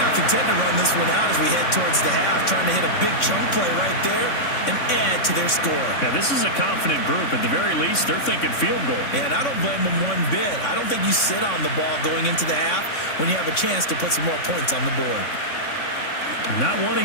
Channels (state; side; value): late; right; 3.6 ms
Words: not content to run this one out as we head towards the half, trying to hit a big chunk play right there and add to their score. Yeah, this is a confident group. At the very least, they're thinking field goal. Yeah, and I don't blame them one bit. I don't think you sit on the ball going into the half when you have a chance to put some more points on the board. Not